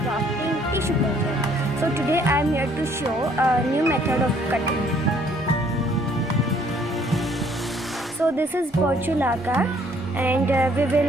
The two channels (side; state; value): both; normal; correlation 0.62